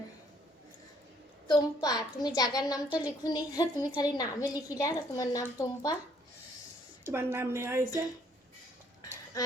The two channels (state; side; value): normal; both; correlation 0.64